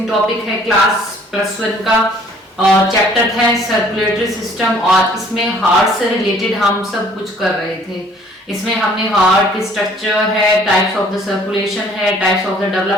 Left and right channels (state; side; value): normal; both; correlation 0.57